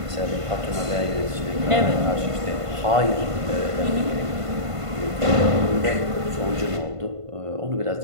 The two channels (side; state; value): left; late; 1.5 ms